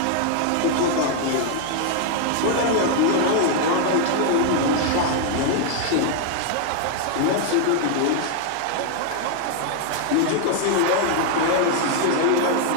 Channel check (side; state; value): both; different; correlation 0.00